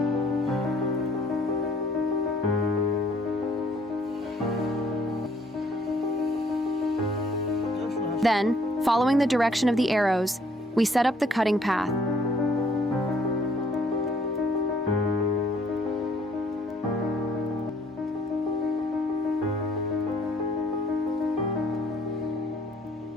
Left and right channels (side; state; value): both; normal; correlation 0.62